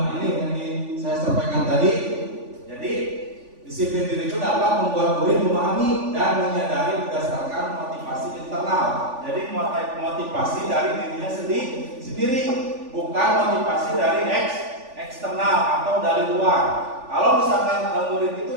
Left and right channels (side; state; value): left; late; 3.5 ms